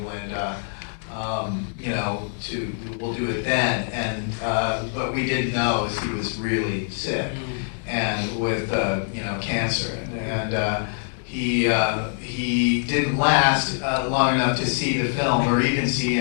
we'll do it then. And what we didn't know is he was really sick and with cancer, and he didn't last long enough to see the film or even see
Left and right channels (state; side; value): silent; right; digital silence